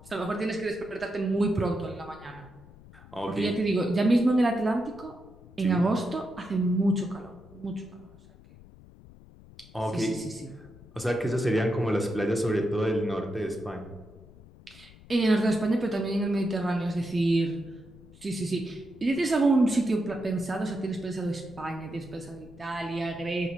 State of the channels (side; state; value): left; noise; rumble, 21 dB below the sound